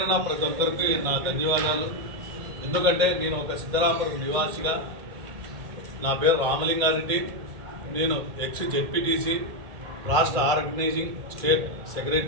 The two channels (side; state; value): left; late; 1.6 ms